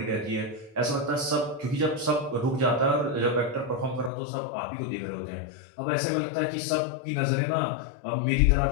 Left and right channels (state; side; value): drops out; right; at 4.1 s